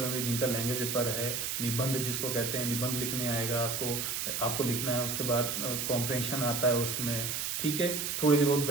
भी, जिनका लैंग्वेज पेपर है। निबंध जिसको कहते हैं, निबंध लिखने आएगा आपको लिखना है। उसके बाद कॉम्प्रिहेंशन आता है उसमें, ठीक है। थोड़ी सी बहुत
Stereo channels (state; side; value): noise; right; hiss, 2 dB below the sound